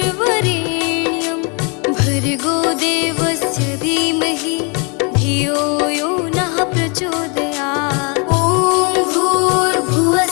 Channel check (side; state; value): right; quieter; 33.6 dB